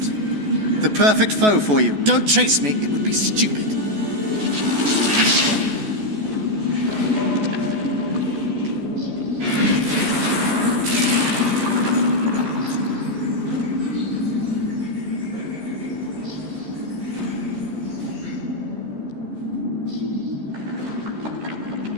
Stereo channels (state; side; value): late; left; 14 ms